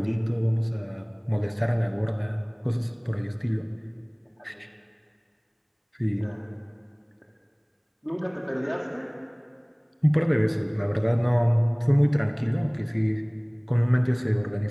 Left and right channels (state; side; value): identical; both; correlation 1.00